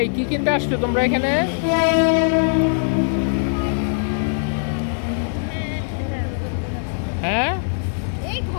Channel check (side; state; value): right; silent; digital silence